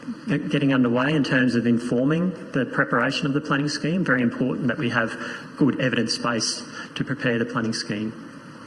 getting underway in terms of informing the preparation of the planning scheme. Very important that we have good evidence base to prepare the planning scheme.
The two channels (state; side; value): identical; both; correlation 1.00